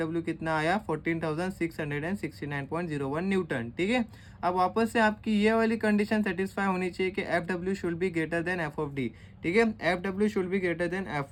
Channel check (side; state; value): both; identical; correlation 1.00